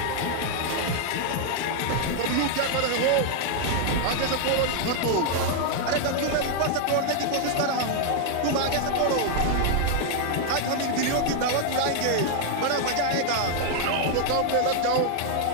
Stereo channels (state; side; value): different; both; correlation 0.00